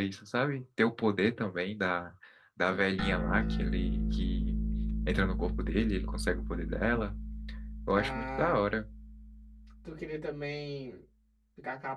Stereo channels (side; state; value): both; identical; correlation 1.00